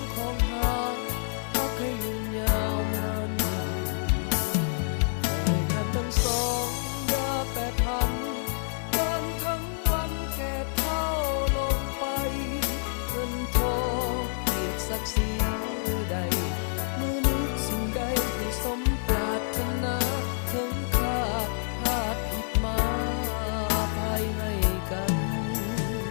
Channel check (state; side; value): silent; right; 59 dB below the other